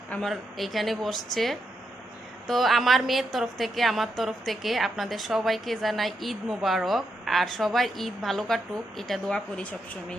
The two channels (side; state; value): both; normal; correlation 0.82